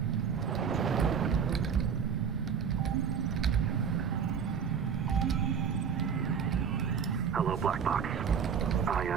Hello, Black Box. I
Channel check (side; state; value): left; quieter; 7.0 dB